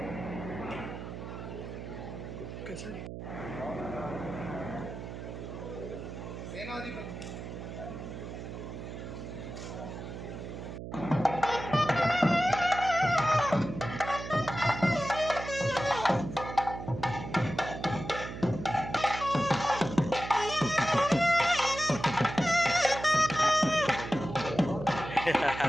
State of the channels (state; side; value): noise; right; hum, 9 dB below the sound